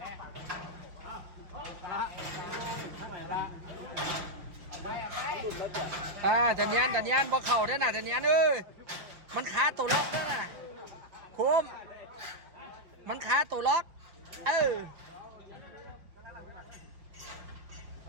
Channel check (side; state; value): left; late; 5.3 ms